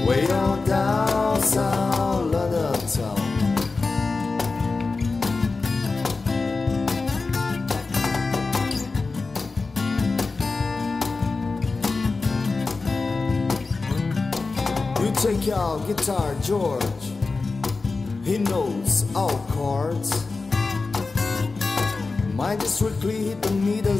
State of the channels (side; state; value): right; quieter; 3.9 dB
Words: way on down south, London town. You take out guitar, George. He knows all chords. Mine just strictly hit the me,